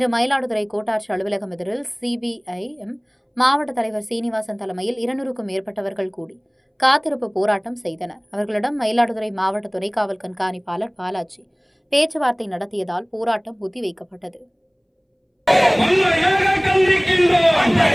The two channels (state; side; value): identical; both; correlation 1.00